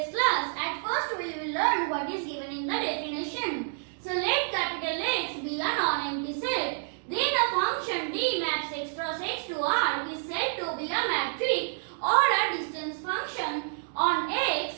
class. At first we will learn what is given in the definition. So let capital X be a non-empty set. Then a function D maps x cross x to R is said to be a matrix or a distance function on X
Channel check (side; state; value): left; silent; digital silence